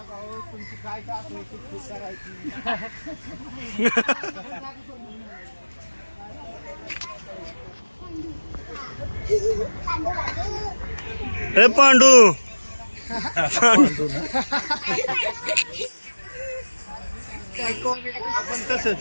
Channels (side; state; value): both; inverted; correlation -1.00